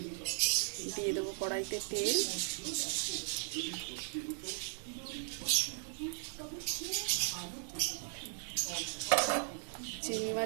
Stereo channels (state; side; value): silent; left; 53 dB below the other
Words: দিয়ে দেবো কড়াইতে তেল, চিংড়ি